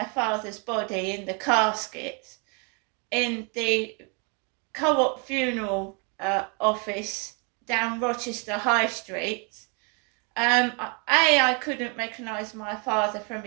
father's body in the casket, in the Co-op funeral office down Rochester High Street. I couldn't recognise my father from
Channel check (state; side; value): quieter; left; 35.0 dB